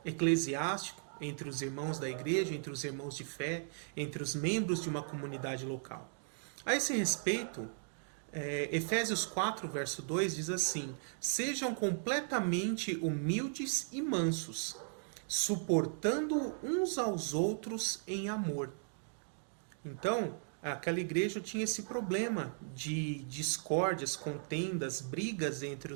eclesiástico, entre os irmãos da igreja, entre os irmãos de fé, entre os membros de uma comunidade local. A esse respeito, Efésios 4, verso 2 diz assim: sejam completamente humildes e mansos, suportando uns aos outros em amor. Então, aquela igreja tinha esse problema de discórdias, contendas, brigas entre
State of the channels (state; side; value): silent; left; digital silence